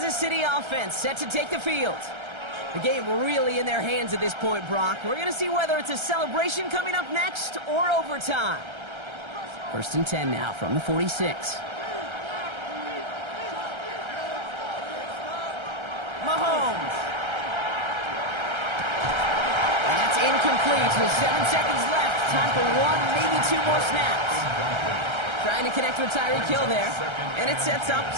City offense set to take the field. The game really in their hands at this point, Brock. We're going to see whether it's a celebration coming up next or overtime. 1st and 10 now from the 46. Mahomes. And that's incomplete with 7 seconds left. Time for 1, maybe 2 more snaps. Trying to connect with Tyreek Hill there. And it sets up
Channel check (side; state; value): left; late; 1.3 ms